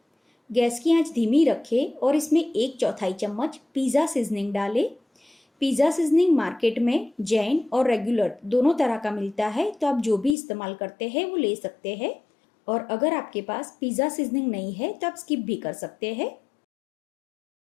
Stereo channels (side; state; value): right; drops out; at 10.4 s